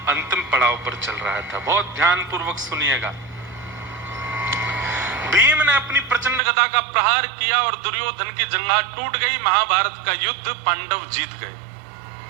अंतिम पड़ाव पर चल रहा था। बहुत ध्यानपूर्वक सुनिएगा। भीम ने अपनी प्रचंड गदा का प्रहार किया और दुर्योधन की जंघा टूट गई। महाभारत का युद्ध पांडव जीत गए।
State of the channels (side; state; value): left; drops out; at 6.4 s